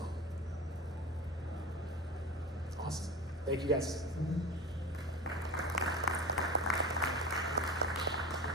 Awesome. Thank you guys.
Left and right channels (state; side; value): normal; both; correlation 0.31